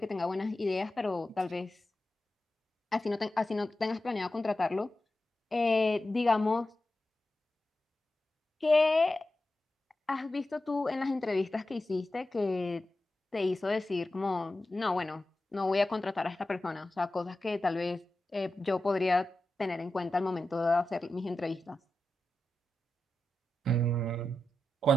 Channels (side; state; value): both; normal; correlation 0.91